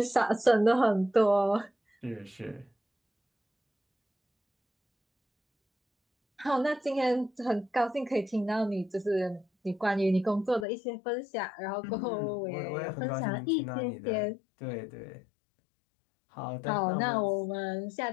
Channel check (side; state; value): right; drops out; at 10.7 s